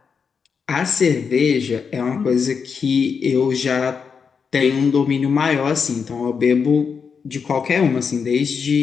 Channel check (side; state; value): right; quieter; 6.0 dB